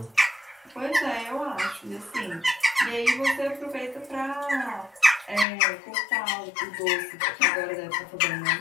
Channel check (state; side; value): drops out; right; at 5.5 s